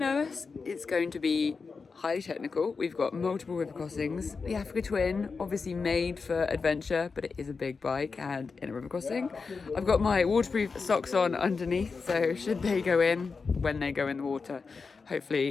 It's going to be highly technical. We've got multiple river crossings. The Africa Twin, obviously made for adventure, but it is a big bike and in a river crossing. I've got my waterproof socks on underneath, so should they go in, when they go in the water,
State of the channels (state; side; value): quieter; right; 4.8 dB